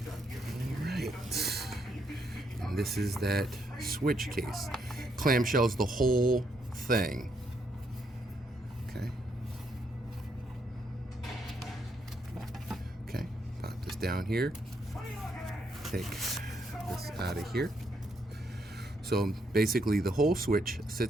All right. And this is that Switch case. Clamshells the whole thing. Okay. Okay. Pop this down here. Take this out of here. So basically the whole Switch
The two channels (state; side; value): normal; both; correlation 0.75